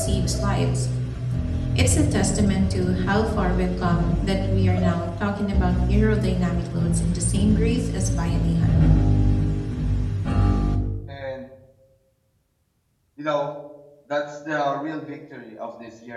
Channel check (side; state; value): both; identical; correlation 1.00